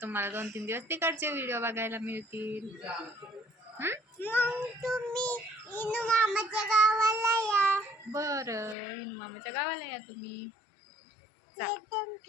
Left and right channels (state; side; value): drops out; right; at 8.8 s